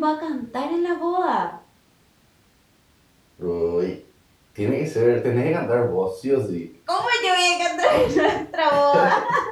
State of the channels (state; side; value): identical; both; correlation 1.00